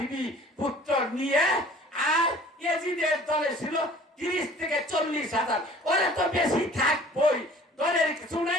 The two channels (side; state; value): both; normal; correlation 0.49